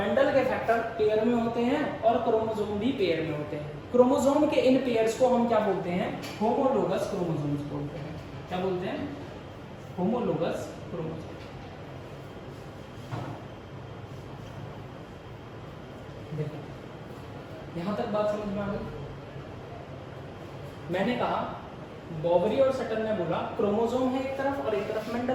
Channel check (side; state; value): both; identical; correlation 1.00